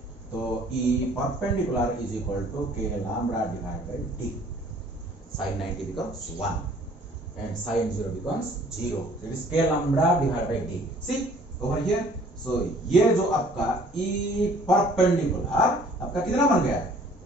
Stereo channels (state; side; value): normal; both; correlation 0.55